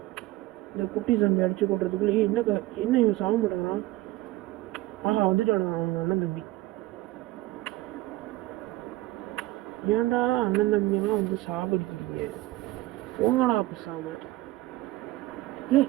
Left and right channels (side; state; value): left; quieter; 17.7 dB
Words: இந்த குட்டி சாமி அடிச்சு கொட்டுறதுக்குள்ளே என்ன இவன் சாக மாட்டேங்கிறான்? ஆஹா, வந்துட்டாங்க அவங்க அண்ணன் தம்பி. ஏன்டா அண்ணன் தம்பியெல்லாம் வந்து சாகடிக்கிறீங்க? போங்கடா பேசாம.